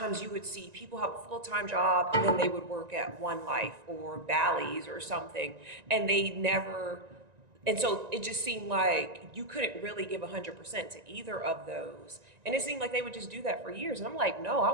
you would see people have a full-time job and then they would work at One Life or Bally's or something, and and so it just seemed like you couldn't really give 100% to either of those. And it seemed like they would just do that for years. And I'm like, no,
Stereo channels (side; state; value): left; late; 1.9 ms